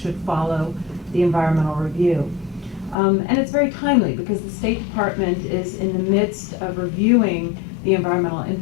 follow the environmental review. And it's very timely because the State Department is in the midst of reviewing the environmental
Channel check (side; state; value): right; drops out; at 3.0 s